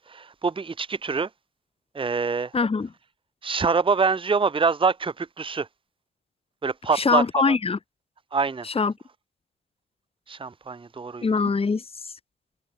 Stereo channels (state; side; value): normal; both; correlation 0.33